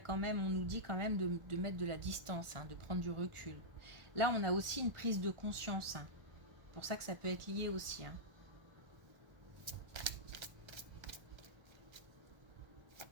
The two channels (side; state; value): left; late; 1.4 ms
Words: même, on nous dit quand même de mettre de la distance, hein, de prendre du recul. Là, on a aussi une prise de conscience. Hein. C'est pour ça que ça peut être lié aussi. Hein.